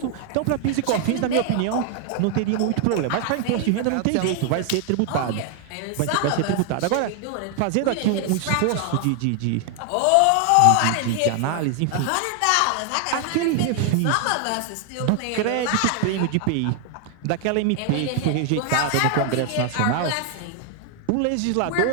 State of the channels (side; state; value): both; different; correlation 0.00